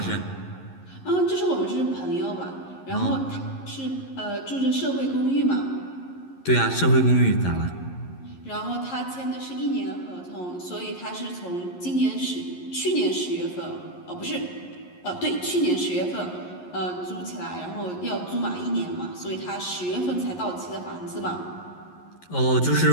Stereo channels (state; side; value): late; right; 11 ms